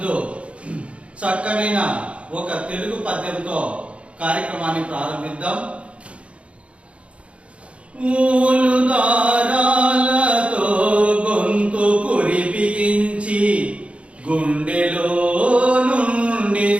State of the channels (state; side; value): late; left; 0.061 ms